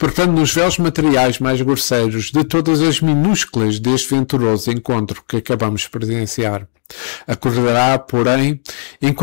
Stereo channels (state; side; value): silent; right; digital silence